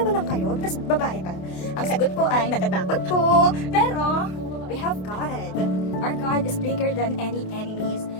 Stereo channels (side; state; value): right; late; 28 ms